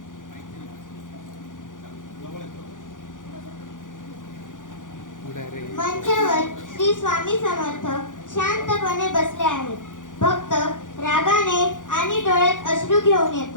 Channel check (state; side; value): late; right; 0.88 ms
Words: मंचावर श्री स्वामी समर्थ शांतपणे बसले आहेत. भक्त रागाने आणि डोळ्यात अश्रू घेऊन